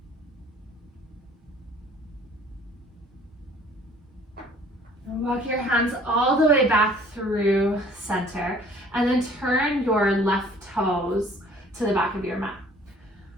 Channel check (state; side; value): normal; both; correlation 0.54